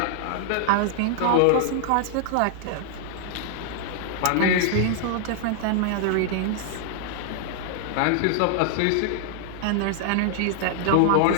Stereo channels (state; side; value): different; both; correlation 0.00